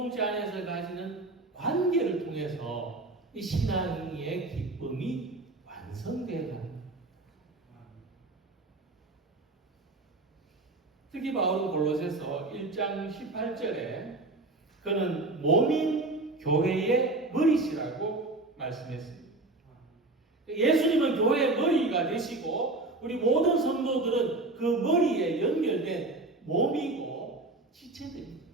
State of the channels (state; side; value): quieter; left; 3.0 dB